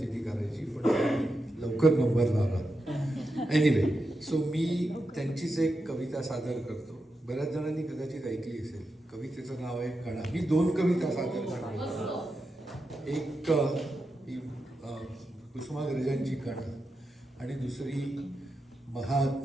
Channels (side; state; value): both; normal; correlation 0.88